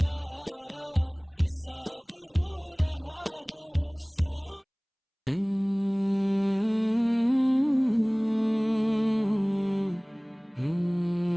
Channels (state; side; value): identical; both; correlation 1.00